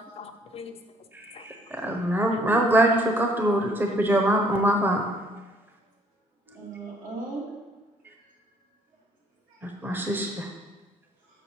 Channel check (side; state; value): both; normal; correlation 0.62